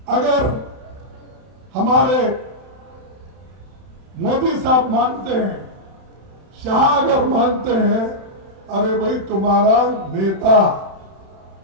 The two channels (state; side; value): late; left; 31 ms